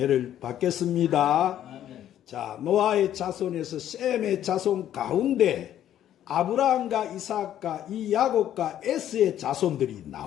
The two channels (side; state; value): right; quieter; 11.3 dB